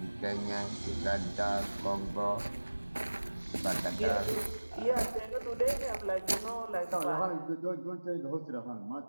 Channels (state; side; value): inverted; both; correlation -1.00